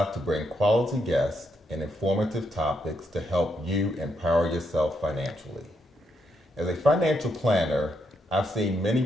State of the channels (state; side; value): normal; both; correlation 0.79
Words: to bring quality guests and informative topics to help you empower yourself financially. As a financial planner, I've seen many